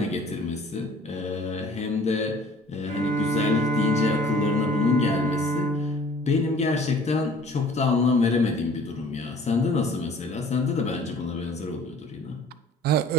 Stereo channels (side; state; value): both; normal; correlation 0.51